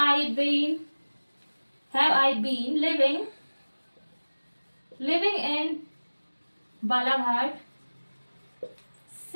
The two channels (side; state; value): both; inverted; correlation -1.00